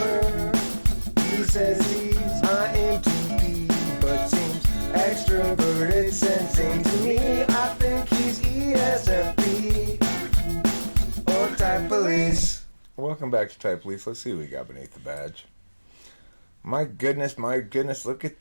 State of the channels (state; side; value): inverted; both; correlation -1.00